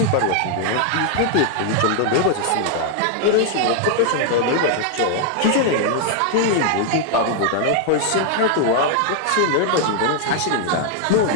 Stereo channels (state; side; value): different; both; correlation 0.00